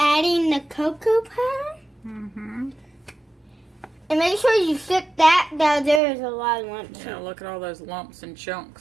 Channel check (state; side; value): drops out; left; at 6.0 s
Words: the cocoa powder. And make sure you sift that. Now there is a lot of lumps. Yeah, look at all those lumps and